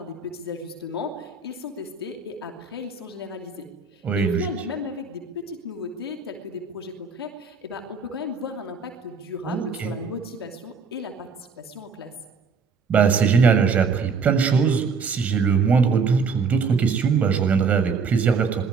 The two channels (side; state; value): left; quieter; 5.1 dB